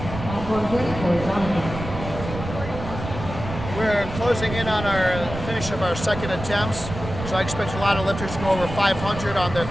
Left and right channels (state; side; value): noise; right; rumble, 8 dB below the sound